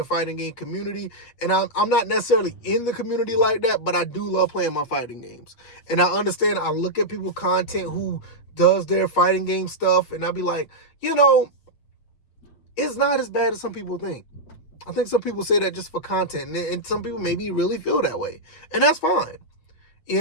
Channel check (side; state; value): right; late; 8.5 ms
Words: fighting game community. And I'm not necessarily in the community like that, but I do love playing my fighting games. And I understand, I look at people content who does their fighting game stuff, and I'll be like, it's not as bad as some people think. I think some people say that just for content, and some people maybe really feel that way. And that's fine.